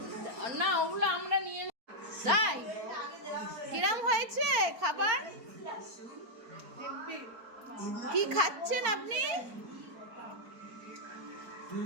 না ওগুলো আমরা নিয়ে তাই কিরম হয়েছে খাবার? কি খাচ্ছেন আপনি?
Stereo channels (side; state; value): left; late; 4.3 ms